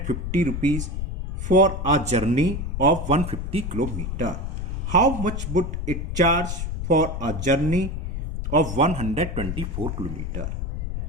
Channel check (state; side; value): noise; left; rumble, 4 dB below the sound